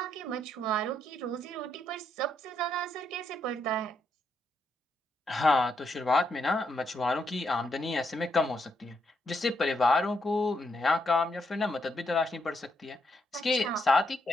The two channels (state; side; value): normal; both; correlation 0.78